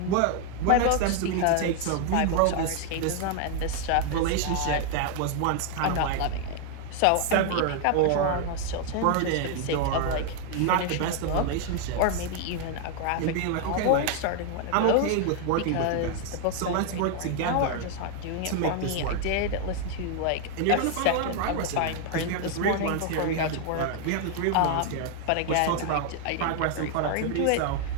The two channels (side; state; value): both; different; correlation 0.00